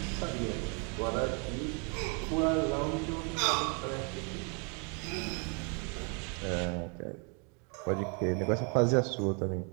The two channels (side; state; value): left; quieter; 35.8 dB